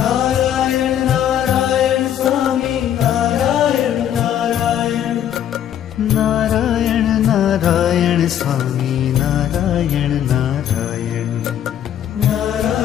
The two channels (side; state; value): right; quieter; 10.3 dB